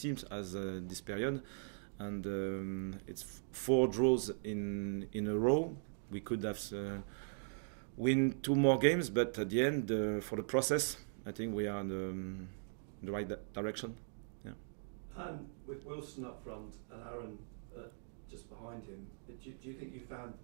has this period, and it's 4 draws in a row. We could have win 2 more games, but at the end, for the process, I think we are in the right direction. And with Wilson up front and Aaron just behind him, do you think you found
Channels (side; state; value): left; silent; digital silence